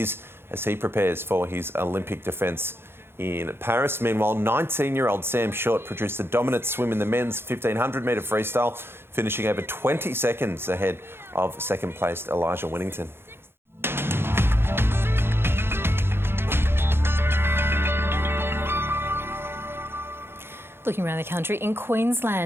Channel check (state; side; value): late; left; 0.11 ms